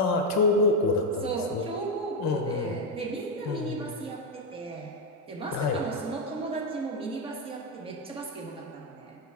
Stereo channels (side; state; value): both; normal; correlation 0.05